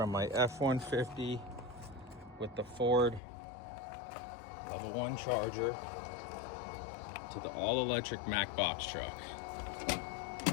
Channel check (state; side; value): drops out; right; at 3.2 s